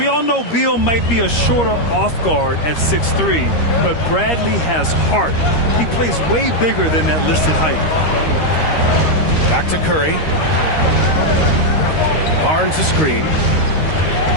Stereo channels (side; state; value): right; late; 13 ms